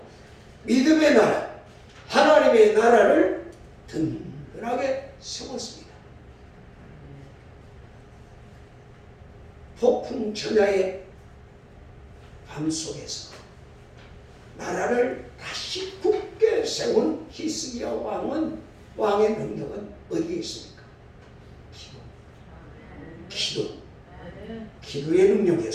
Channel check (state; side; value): identical; both; correlation 1.00